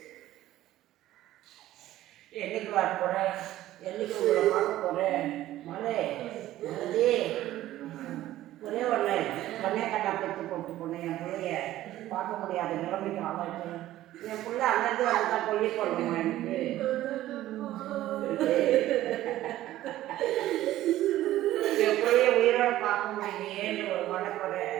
என்னைக்கு வர போறேன், என்னைக்கு உங்களை பார்க்க போறேன். மலை மறுபடி ஒரே ஒன்று பொண்ணே கண்ணா பெற்று போட்டு பொண்ணு என் பிள்ளைய பார்க்க முடியாத நிலைமைக்கு ஆளாச்சு. என் பிள்ளை அங்கேருந்து வந்து தான் கொல்லி போடணுமா எனக்கு. என் பிள்ளைய உயிரோட பார்க்க முடியலையேன்னு ஒரு மனக்குறை.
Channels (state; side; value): quieter; left; 14.5 dB